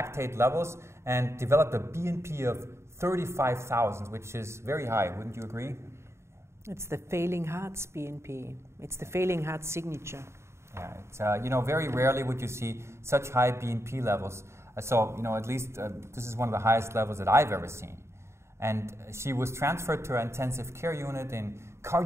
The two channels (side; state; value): left; late; 0.13 ms